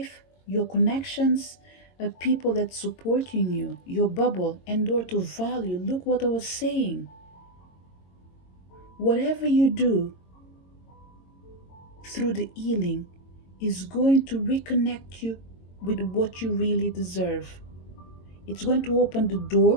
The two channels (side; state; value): right; late; 22 ms